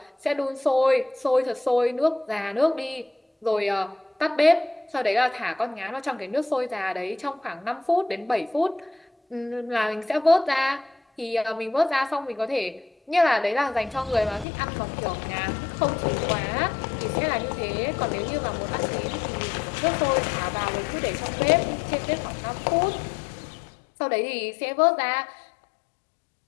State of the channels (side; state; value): right; drops out; at 14.5 s